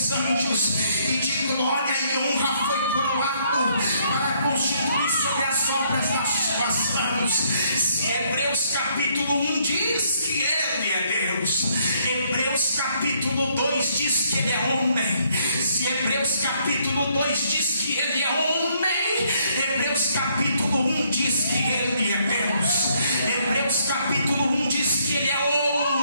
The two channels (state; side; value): inverted; both; correlation -0.69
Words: anjos, e de glória e honra foi coroado para constituir sobre as obras das suas mãos. Se Hebreus capítulo 1 diz que ele é Deus, Hebreus capítulo 2 diz que ele é homem. Se Hebreus capítulo 2 diz que ele é homem, Hebreus capítulo 1 diz que ele é Deus. Hebreus capítulo 1 diz que ele é